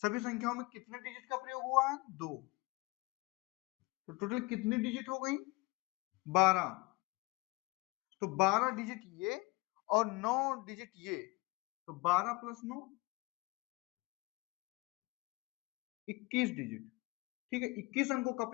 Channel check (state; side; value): quieter; right; 23.4 dB